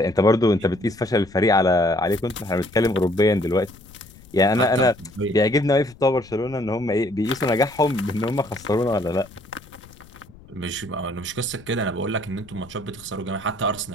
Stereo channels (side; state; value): left; noise; rumble, 22 dB below the sound